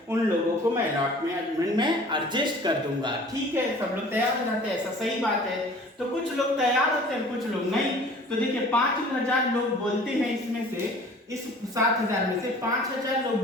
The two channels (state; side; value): normal; both; correlation 0.48